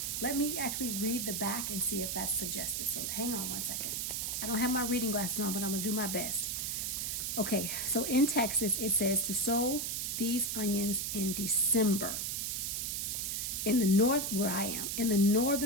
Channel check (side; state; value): right; noise; hiss, 1 dB below the sound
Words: Let me actually read the back and see if that's suggested. So hang on one second. I don't have my reading glasses on, but I'm gonna do my best. Okay, so in Texas, it says to sow these onions in December. In the north, where I am, in the